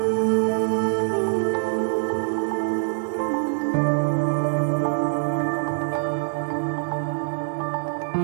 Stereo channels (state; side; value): silent; left; digital silence